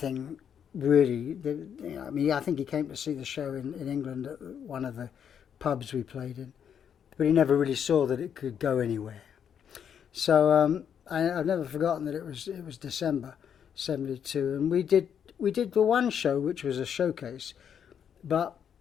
really. I think he came to see the show in England at one of the pubs we played in. but he never really saw that it could go anywhere. So I've never forgotten that it was December '72, and we did the one show, which was a showcase, but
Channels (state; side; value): quieter; right; 8.2 dB